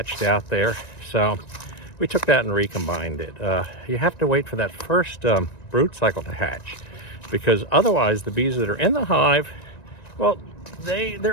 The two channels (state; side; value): late; right; 1.9 ms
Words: out there. So we took that and recombined it. You have to wait for that first brood cycle to hatch, because otherwise the bees that are in the hive, well,